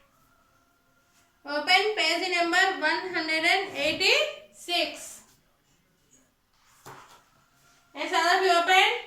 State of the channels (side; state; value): both; identical; correlation 1.00